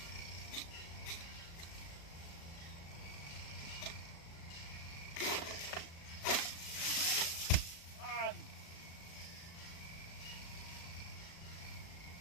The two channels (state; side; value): late; right; 36 ms